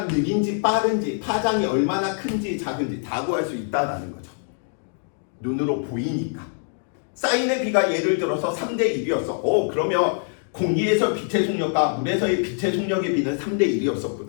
느린지 빠른지, 파장이 얼마나 큰지 작은지 다 구할 수 있다는 거죠. 눈으로 보이니까. 사인의 비가 예를 들어서 3대 1이었어. 그러면 공기에서 빛의 속력과 물에서의 빛의 속력의 비는 3대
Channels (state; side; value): silent; right; 63 dB below the other